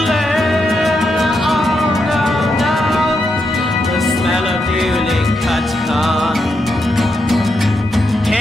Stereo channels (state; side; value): normal; both; correlation 0.83